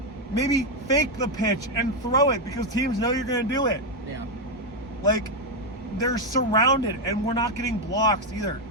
Maybe fake the pitch and throw it because teams know you're going to do it. Yeah. They're surrounded and we're not getting blocks either.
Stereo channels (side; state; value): both; normal; correlation 0.04